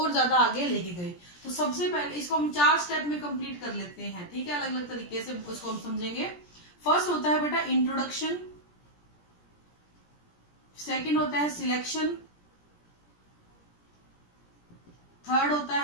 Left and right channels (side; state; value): right; late; 17 ms